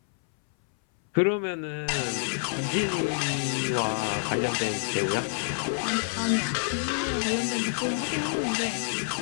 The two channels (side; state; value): right; silent; 60 dB below the other